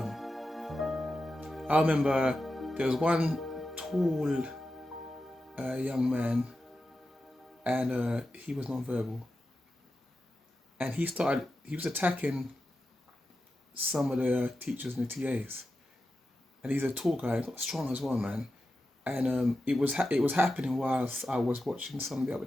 I remember there was one tall young man, and he was non-verbal. And he was attacking some of the teachers and the TAs. And he's a tall guy, got strong as well, man. And it was happening whilst I was watching some of the other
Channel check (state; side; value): normal; both; correlation 0.91